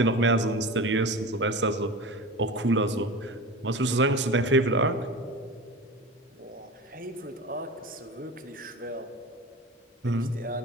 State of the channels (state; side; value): normal; both; correlation 0.31